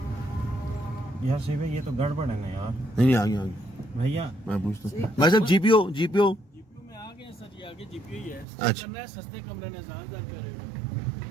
यार सही भाई, ये तो गड़बड़ है ना यार। नहीं आगे आगे भैया मैं पूछता हूँ भाई साहब, जीपीओ जीपीओ में आ गए सर, ये आगे जीपीओ ही है। अच्छा करना है सस्ते कमरे ने ज़्यादा कर रहे हो।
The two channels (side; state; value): left; drops out; at 8.5 s